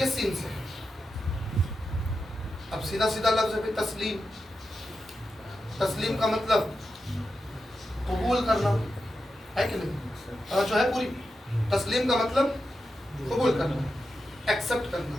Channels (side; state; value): both; normal; correlation 0.89